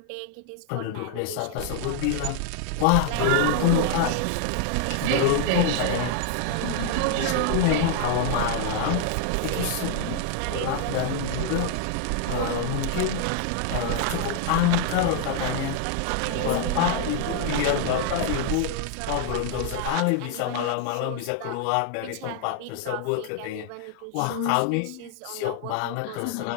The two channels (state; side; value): different; both; correlation 0.00